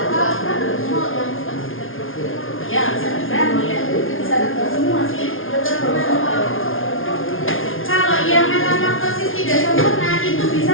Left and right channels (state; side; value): late; right; 0.59 ms